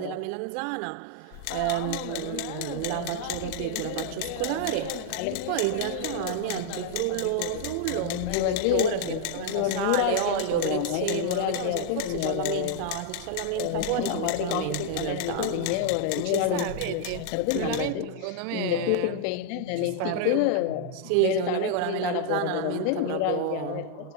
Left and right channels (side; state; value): both; different; correlation 0.00